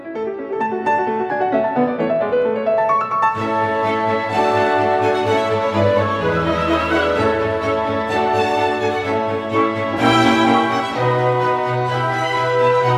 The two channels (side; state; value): both; identical; correlation 1.00